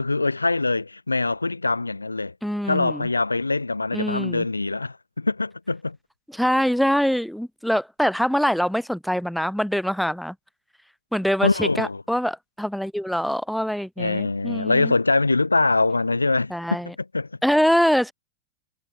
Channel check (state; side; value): normal; both; correlation 0.01